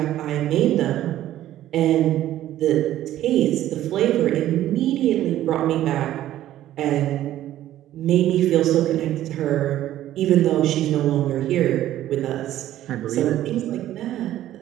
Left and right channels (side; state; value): left; quieter; 13.2 dB